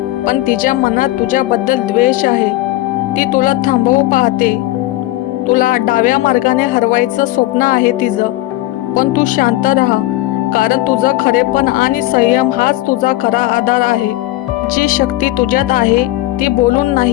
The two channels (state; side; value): quieter; right; 16.8 dB